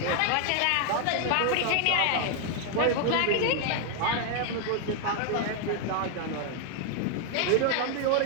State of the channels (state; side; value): different; both; correlation 0.00